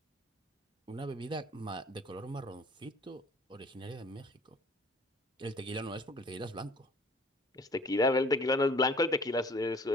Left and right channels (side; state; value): both; normal; correlation 0.52